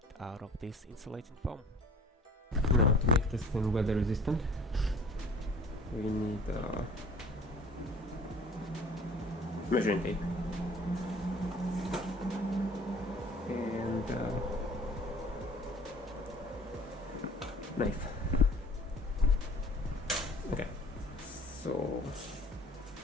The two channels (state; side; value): normal; both; correlation 0.48